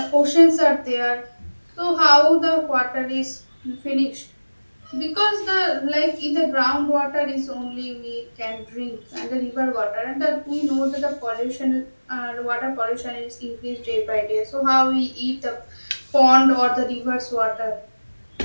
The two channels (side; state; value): both; inverted; correlation -1.00